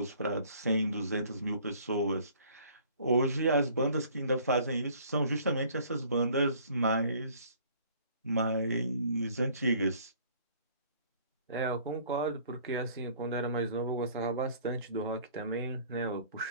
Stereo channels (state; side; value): inverted; both; correlation -0.55